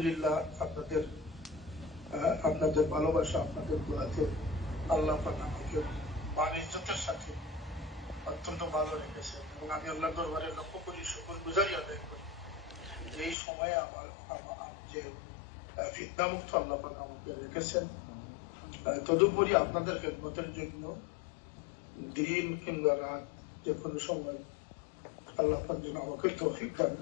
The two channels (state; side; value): drops out; right; at 13.4 s